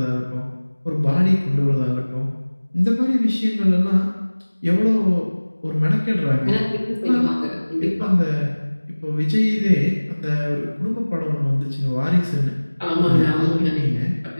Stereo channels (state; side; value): inverted; both; correlation -1.00